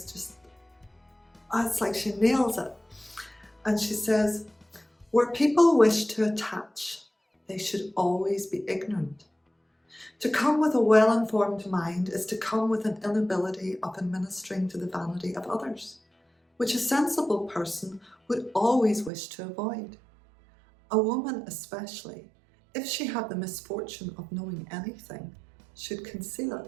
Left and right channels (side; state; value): left; drops out; at 19.1 s